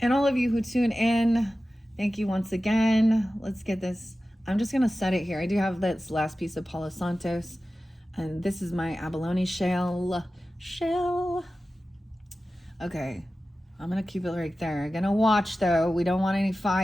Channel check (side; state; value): both; normal; correlation 0.95